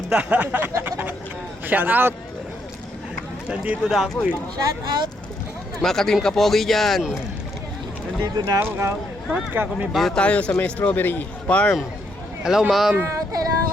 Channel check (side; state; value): both; normal; correlation 0.75